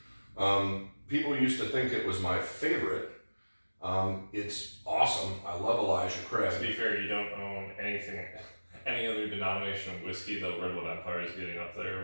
People used to think it was my favorite. It's awesome. I love Elijah Craig. To be fair, you don't own any other denomination of whiskey, though Redwood Empire is getting up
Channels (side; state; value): both; inverted; correlation -1.00